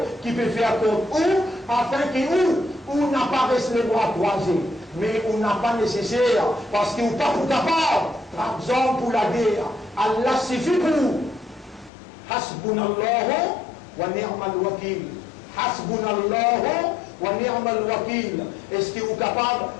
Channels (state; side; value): drops out; right; at 11.9 s